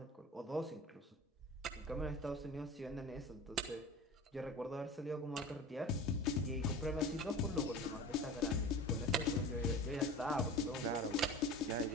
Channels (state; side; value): normal; both; correlation 0.36